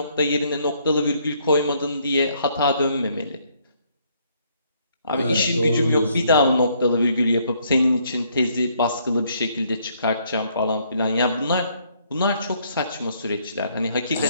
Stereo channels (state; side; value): inverted; both; correlation -0.68